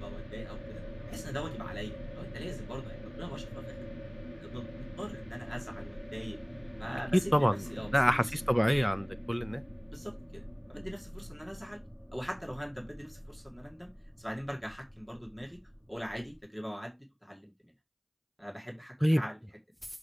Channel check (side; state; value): both; identical; correlation 1.00